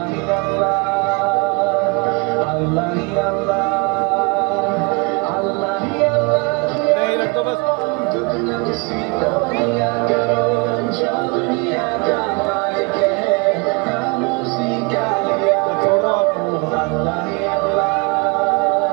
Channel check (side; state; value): left; quieter; 29.4 dB